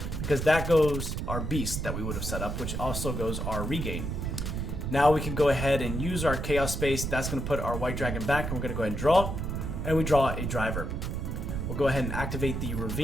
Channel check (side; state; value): right; noise; rumble, 3 dB below the sound